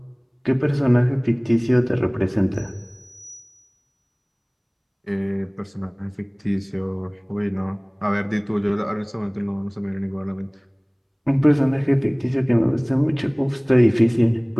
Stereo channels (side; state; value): both; identical; correlation 1.00